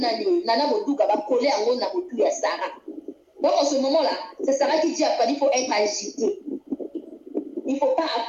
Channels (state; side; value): identical; both; correlation 1.00